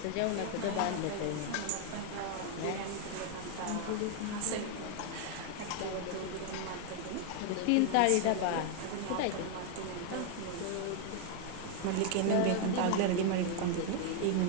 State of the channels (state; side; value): different; both; correlation 0.00